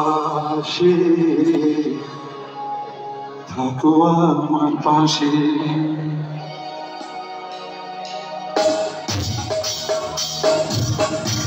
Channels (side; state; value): both; identical; correlation 1.00